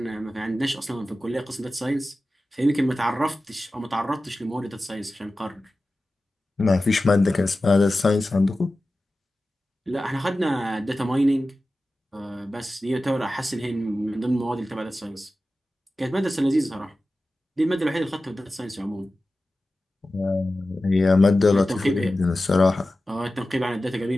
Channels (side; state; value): both; normal; correlation 0.95